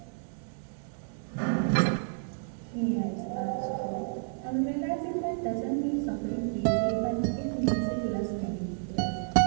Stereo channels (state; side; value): silent; left; 58 dB below the other